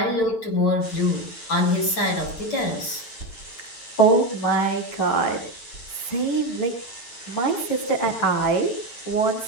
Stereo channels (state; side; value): late; right; 8.9 ms